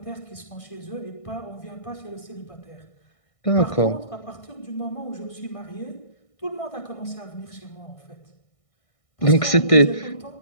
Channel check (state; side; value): late; right; 1.6 ms